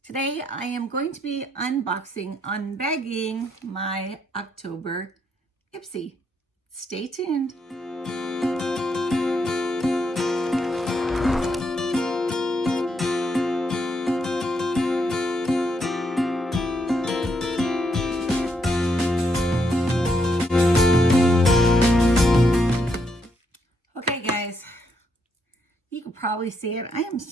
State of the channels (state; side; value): normal; both; correlation 0.77